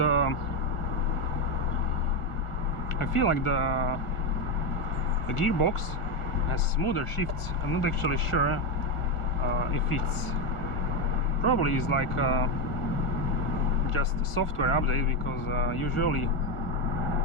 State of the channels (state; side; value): late; right; 1.6 ms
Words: I feel like the gearbox has smoother shifts. I'm not actually sure if it's probably is like just a software update, because usually